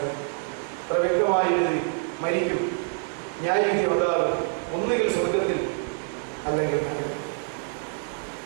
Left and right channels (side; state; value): left; silent; 55 dB below the other